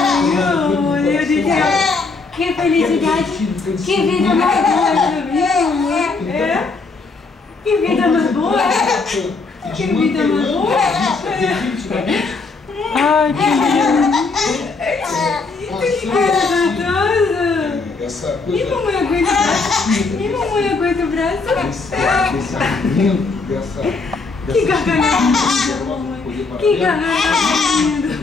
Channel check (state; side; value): quieter; right; 4.1 dB